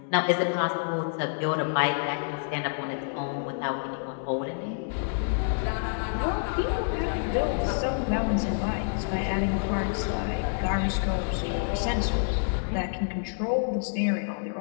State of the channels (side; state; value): right; silent; digital silence